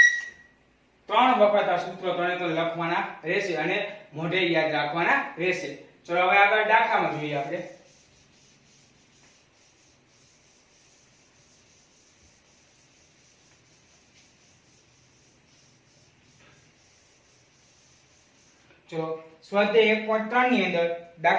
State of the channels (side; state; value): both; identical; correlation 1.00